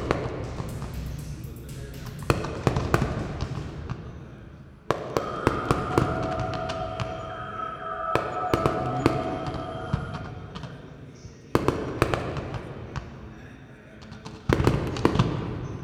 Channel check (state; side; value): identical; both; correlation 1.00